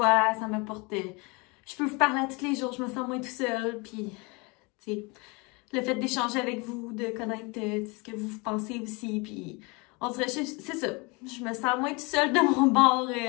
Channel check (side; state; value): right; quieter; 28.3 dB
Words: ça m'apporte... je peux vous parler à tous les jours, je me sens moins tout seul. Puis, tu sais, le fait d'échanger avec vous, de connaître ce que vous pensez aussi. Puis, on dirait, c'est ça. Je me sens moins tout seul de mon bord